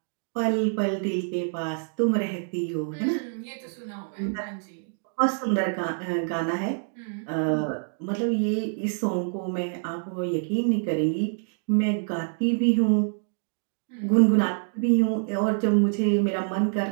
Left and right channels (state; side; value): silent; left; digital silence